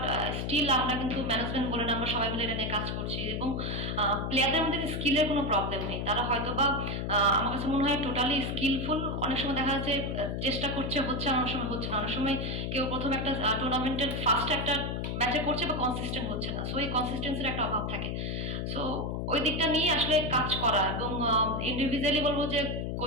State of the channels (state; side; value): noise; left; hum, 2 dB below the sound